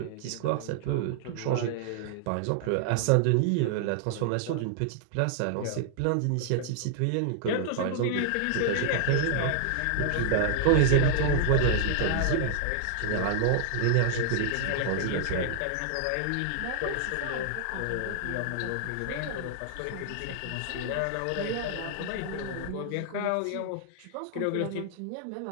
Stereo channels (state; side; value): different; both; correlation 0.00